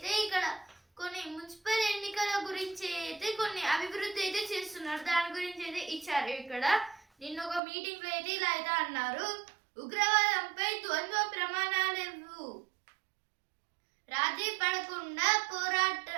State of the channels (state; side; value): drops out; left; at 7.6 s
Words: ఇక్కడ కొన్ని మున్సిపల్ ఎన్నికల గురించి అయితే కొన్ని అభివృద్ధి అయితే చేస్తున్నారు, దాని గురించి అయితే ఇచ్చారు. ఇక్కడ నిన్న ఒక మీటింగ్ లో అయితే ఇలా అయితే అన్నారు, ఉగ్రవాదంపై ద్వంద్వ ప్రమాణాలు రాజీ పడకుండా